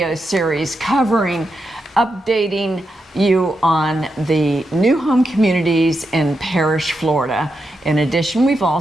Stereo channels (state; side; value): normal; both; correlation 0.86